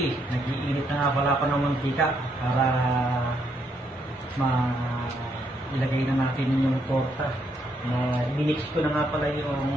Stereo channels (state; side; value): normal; both; correlation 0.75